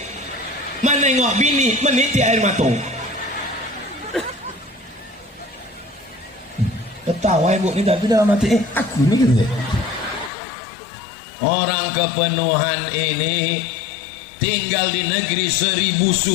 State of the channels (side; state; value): right; drops out; at 10.3 s